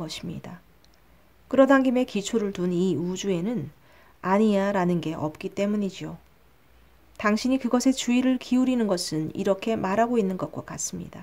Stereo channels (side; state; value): both; identical; correlation 1.00